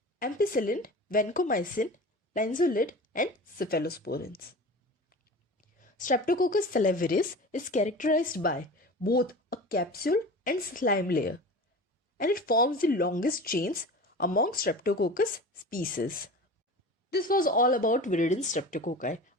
ampicillin, vancomycin, linezolid, and cephalosporins. Streptococcus salivarius is characterized by both a capsule and slime layer, and it forms the longest chains among Streptococcus species. This was all about Viridans Streptococci.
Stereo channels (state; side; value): normal; both; correlation 0.35